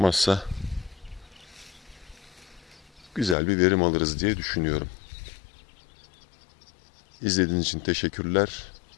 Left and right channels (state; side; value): drops out; right; at 3.4 s